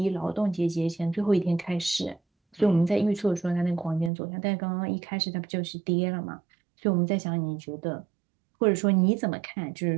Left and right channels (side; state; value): left; drops out; at 4.1 s